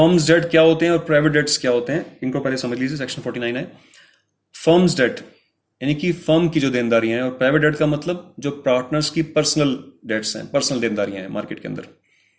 debt क्या होते हैं और प्राइवेट डेट्स क्या होते हैं, इनको पहले समझ लीजिए। सेक्शन 49 है। फर्म्स डेट यानी कि फर्म की जो देनदारियां हैं, और प्राइवेट डेट का मतलब जो पार्टनर्स की पर्सनल डेट्स हैं, पर्सनल देनदारियां हैं मार्केट के अंदर।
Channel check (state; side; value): identical; both; correlation 1.00